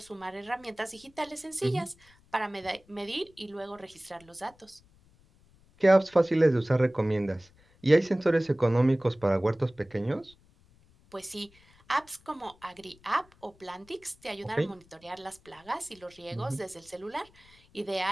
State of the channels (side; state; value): left; noise; rumble, 29 dB below the sound